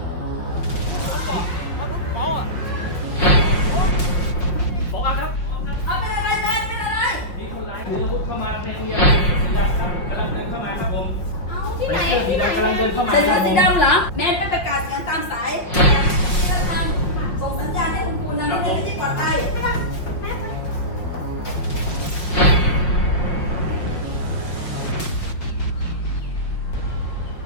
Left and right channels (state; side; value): late; right; 5.6 ms